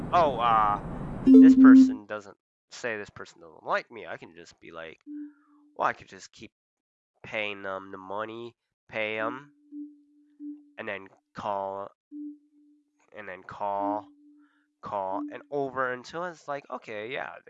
oh, this person doesn't like me. I can just be like, well, I could just keep paying them the money, pay them, and then call, and over until it's like, okay, yeah,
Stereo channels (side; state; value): both; identical; correlation 1.00